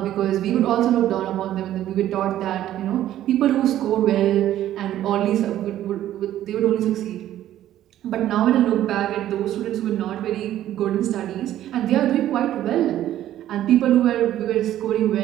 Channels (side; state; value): left; quieter; 12.6 dB